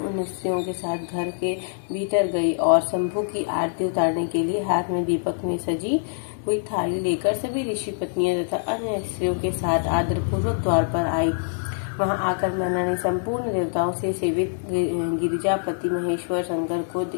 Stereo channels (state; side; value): silent; right; digital silence